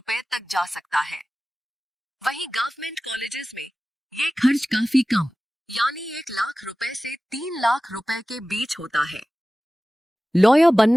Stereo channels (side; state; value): both; normal; correlation 0.96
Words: तक जा सकता है। वहीं गवर्नमेंट कॉलेजेस में ये खर्च काफी कम, यानी 1 लाख रुपए से 3 लाख रुपए के बीच होता है। लॉयर